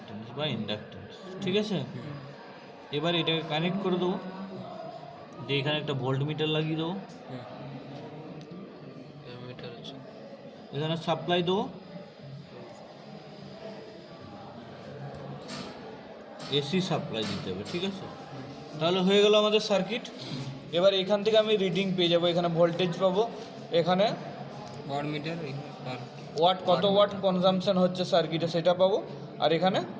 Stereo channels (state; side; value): identical; both; correlation 1.00